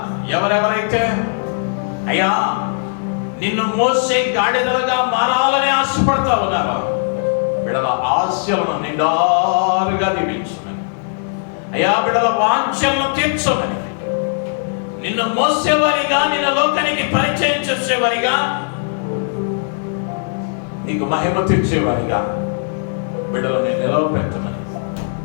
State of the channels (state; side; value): silent; right; digital silence